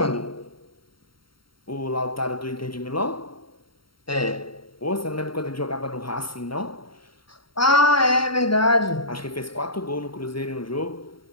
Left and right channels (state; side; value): late; right; 0.73 ms